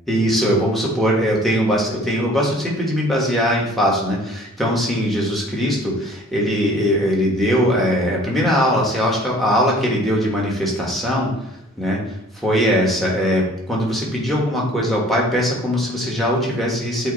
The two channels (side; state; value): both; normal; correlation 0.52